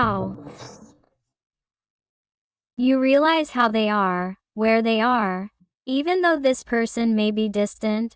You realize how they are, where they are, even though this person may be distant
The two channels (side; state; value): both; identical; correlation 1.00